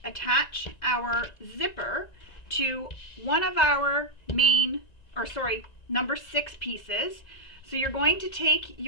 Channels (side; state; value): right; late; 1.9 ms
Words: attach our zipper to one of our number 6 pieces. So you're going to take